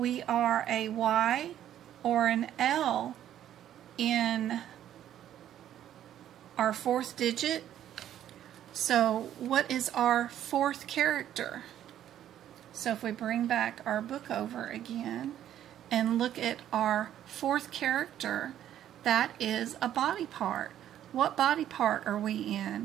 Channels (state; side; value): quieter; left; 11.2 dB